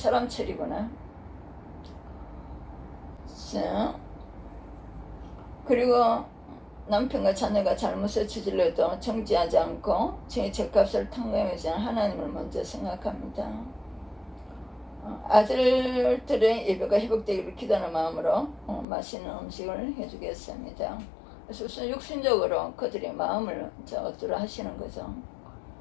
처리구나. 자, 그리고 남편과 자녀가 잘못을 저질러도 정지하지 않고 제 죄값을 탕감하지 않은 하나님을 먼저 생각합니다. 아들들의 예배가 회복되기를 기도하는 마음으로 맛있는 음식을 해주겠습니다. 그래서 우선 육신적으로 그들의 마음을 얻도록 하시는 거죠.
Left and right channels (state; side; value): drops out; right; at 18.9 s